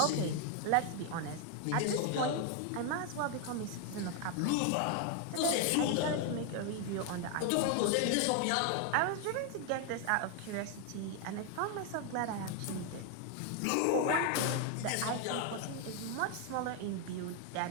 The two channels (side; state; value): both; different; correlation 0.01